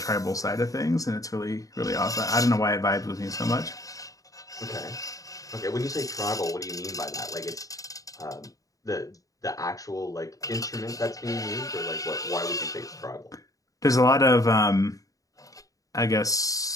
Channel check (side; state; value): right; late; 0.17 ms